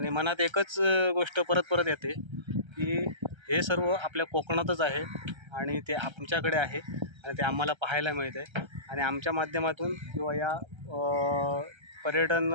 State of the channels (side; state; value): left; late; 1.3 ms